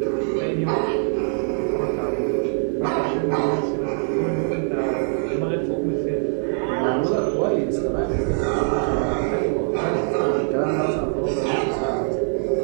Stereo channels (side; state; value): left; silent; digital silence